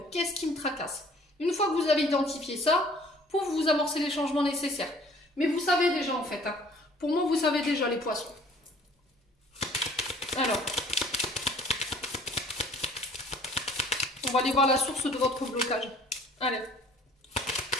Qu'est-ce qui me tracasse? Une fois que vous avez identifié ça, pour vous amorcer les changements nécessaires. Mais vous savez déjà en fait, hein. Pour moi vous savez déjà les poissons. Alors, on va aller voir la source de votre blocage. Allez.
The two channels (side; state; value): both; normal; correlation 0.54